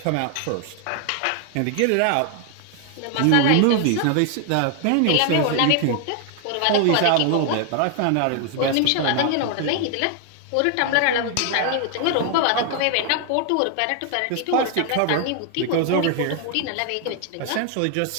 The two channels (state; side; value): different; both; correlation 0.00